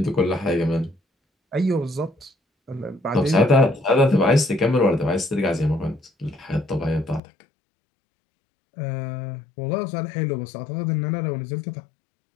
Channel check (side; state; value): right; drops out; at 7.2 s